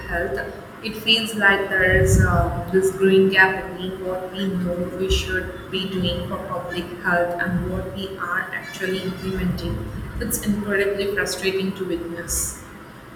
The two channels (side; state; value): both; identical; correlation 1.00